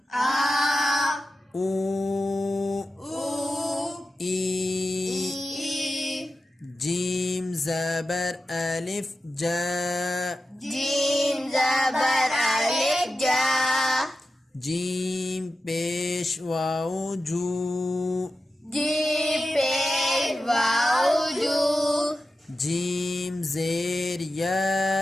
او ای جیم زبر ألف جا جیم پیش واو جو جیم زیر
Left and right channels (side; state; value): both; normal; correlation 0.92